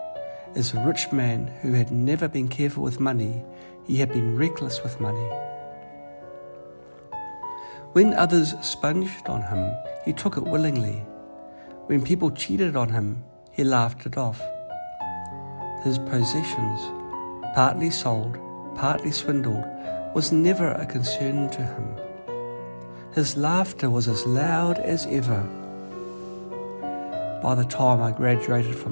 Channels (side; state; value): both; inverted; correlation -1.00